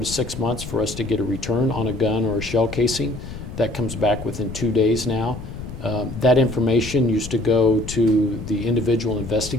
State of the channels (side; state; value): left; noise; rumble, 10 dB below the sound